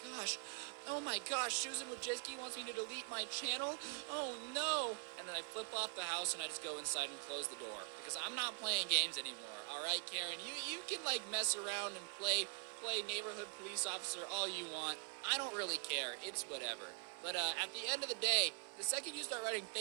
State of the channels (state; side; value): quieter; left; 33.5 dB